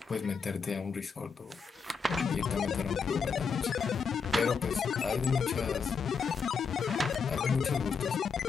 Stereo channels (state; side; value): quieter; right; 5.6 dB